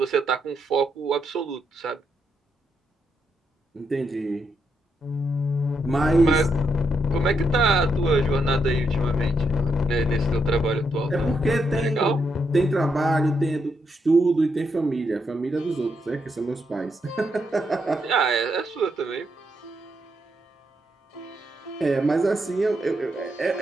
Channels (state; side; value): normal; both; correlation 0.80